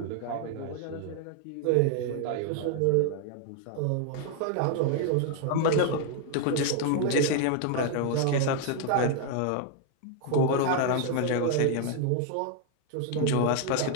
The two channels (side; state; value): both; different; correlation 0.00